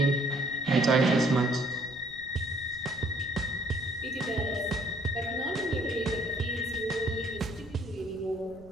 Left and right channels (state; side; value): noise; left; rumble, 20 dB below the sound